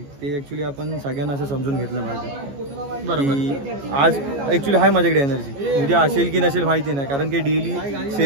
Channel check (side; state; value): left; late; 14 ms